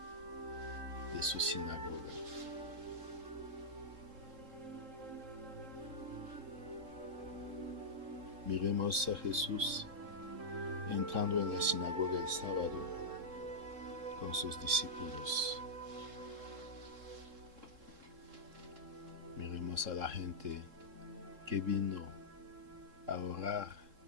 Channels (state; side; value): late; left; 3.7 ms